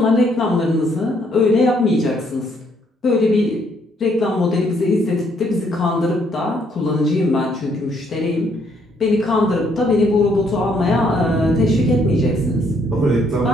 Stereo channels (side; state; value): both; normal; correlation 0.69